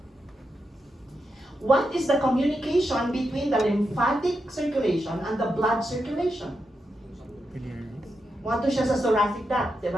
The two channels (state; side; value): normal; both; correlation 0.86